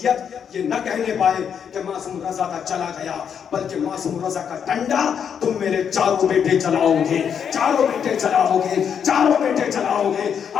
ये न कहने पाए कि मासूम रजा का चला गया, बल्कि मासूम रजा का डंडा तुम मेरे चारों बेटे चलाओगे, चारों बेटे चलाओगे, चारों बेटे चलाओगे।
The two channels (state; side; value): quieter; right; 7.7 dB